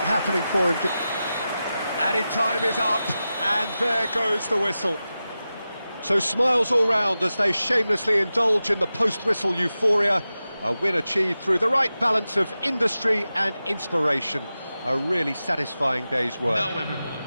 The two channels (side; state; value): both; inverted; correlation -0.93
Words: happening for him. Added time is up, and there goes the whistle. So smiles all round as they shamelessly indulge in the post-whistle euphoria. A win achieved through the right balance of industry and inspiration. A really satisfying day's work. Now everyone,